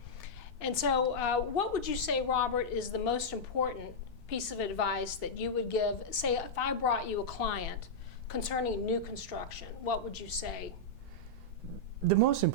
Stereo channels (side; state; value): both; normal; correlation -0.07